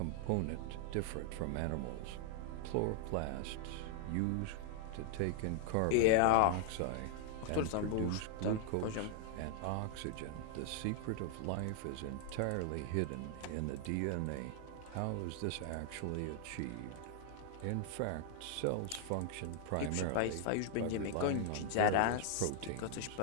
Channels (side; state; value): both; different; correlation 0.00